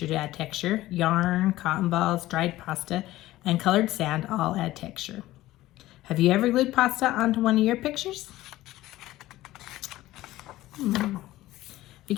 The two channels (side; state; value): right; quieter; 16.2 dB